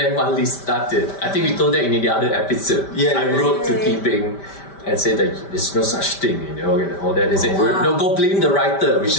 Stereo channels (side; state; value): right; late; 5.1 ms